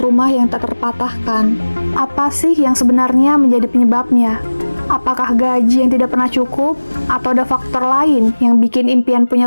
yang tak terpatahkan. Apa sih yang sebenarnya menjadi penyebabnya? Apakah gaji yang tidak pernah cukup? Atau ada faktor lain yang bikin impian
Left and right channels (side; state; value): both; inverted; correlation -1.00